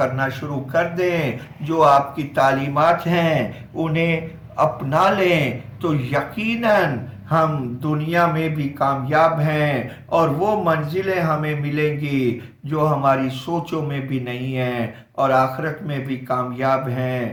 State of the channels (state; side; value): identical; both; correlation 1.00